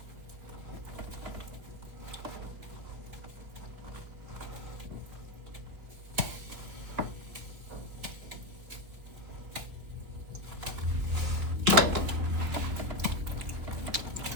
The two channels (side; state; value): left; late; 3.9 ms